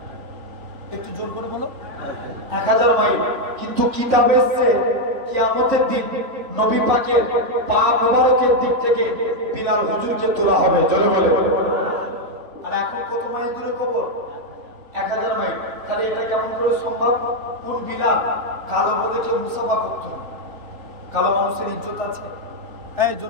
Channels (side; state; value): left; late; 3.3 ms